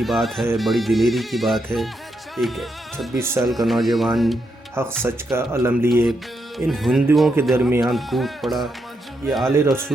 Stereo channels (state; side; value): normal; both; correlation 0.81